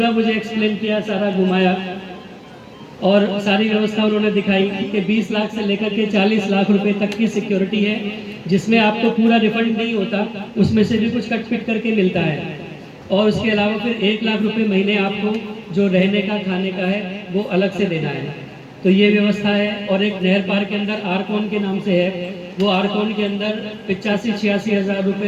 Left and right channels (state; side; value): identical; both; correlation 1.00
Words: मुझे एक्सप्लेन किया, सारा घुमाया और सारी व्यवस्था उन्होंने दिखाई कि 20 लाख से लेकर के 40 लाख रुपए तक की सिक्योरिटी है, जिसमें आपको पूरा रिफंड नहीं होता, उसमें से भी कुछ कट पिट करके मिलता है। और उसके अलावा फिर 1 लाख रुपए महीने आपको जो रहने का खाने का है वो अलग से देना है। तो ये व्यवस्था है। और एक नहर पार्क के अंदर आरकोन के नाम से है, वो आरकोन के अंदर 85-86 हज़ार